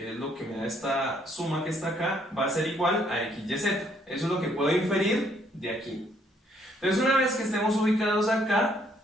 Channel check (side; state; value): both; normal; correlation 0.68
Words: es lo que me da esta suma que está acá, va a ser igual a x, y, z. Eso es lo que puedo inferir de aquí. Entonces una vez que estemos ubicados acá,